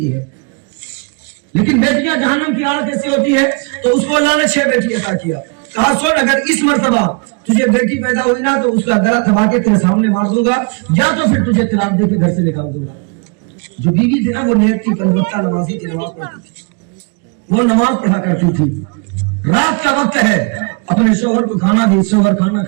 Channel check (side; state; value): left; quieter; 34.1 dB